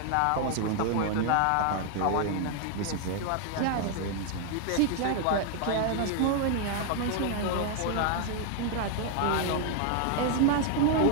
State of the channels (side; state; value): both; different; correlation 0.00